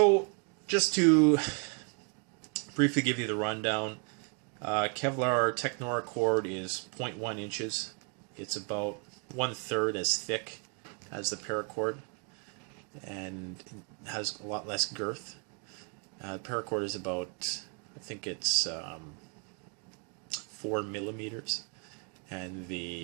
just to briefly give you the rundown, Kevlar Technora cord is 0.1 inches. It's about 1/3 as thick as the paracord, and has a lot less girth. Paracord is about, I think it's 4 millimeters, and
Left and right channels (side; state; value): left; quieter; 36.1 dB